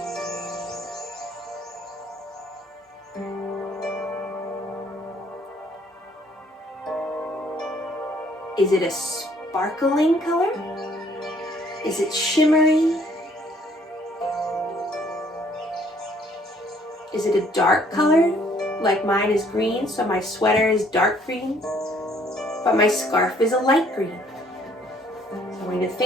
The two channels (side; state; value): both; normal; correlation 0.62